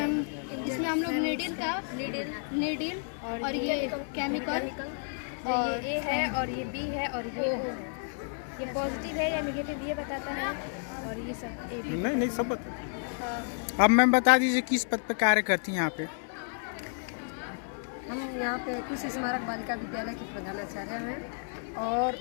इसमें हम लोग नीडल और ये केमिकल और ये है और ये बी है और ये पॉजिटिव है या नेगेटिव ये बताता है और ये सब नहीं सब बता। अब मैम बता दीजिए किस पद पे कार्य करती हैं यहाँ पे? हम यहाँ पे कुश स्मारक बालिका विद्यालय की प्रधानाचार्य हैं और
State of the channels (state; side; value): silent; right; 57 dB below the other